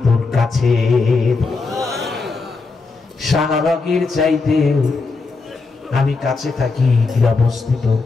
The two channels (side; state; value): right; quieter; 4.1 dB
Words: তোর কাছে। শাল রগের চাইতেও আমি কাছে থাকি।